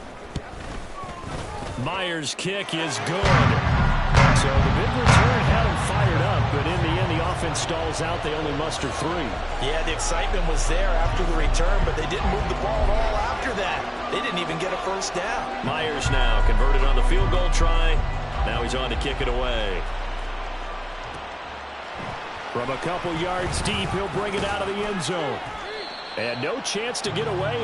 Myers' kick is good. So the big return had him fired up, but in the end, the offense stalls out. They only muster 3. Yeah, the excitement was there after the return, but they didn't move the ball at all after that. They didn't even get a first down. Myers now converted on the field goal try. Now he's on to kick it away. From a couple yards deep, he'll bring it out of the end zone. And no chance to get away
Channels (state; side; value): identical; both; correlation 1.00